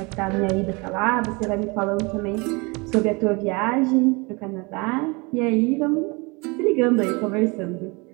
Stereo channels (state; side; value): quieter; left; 27.8 dB